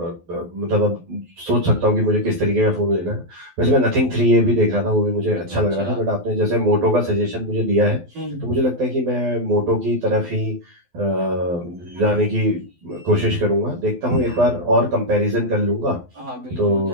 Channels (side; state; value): left; late; 12 ms